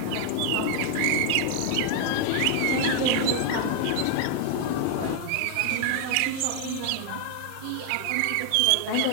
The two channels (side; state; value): both; different; correlation 0.00